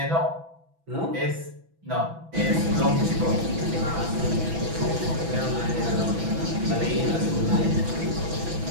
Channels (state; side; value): late; left; 6.0 ms